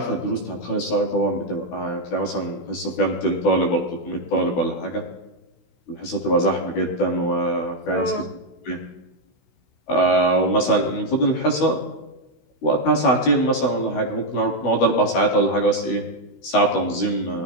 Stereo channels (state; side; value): late; right; 16 ms